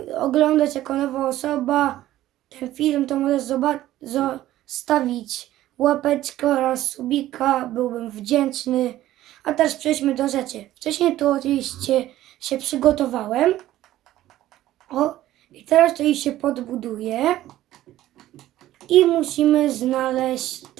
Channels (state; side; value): quieter; left; 14.3 dB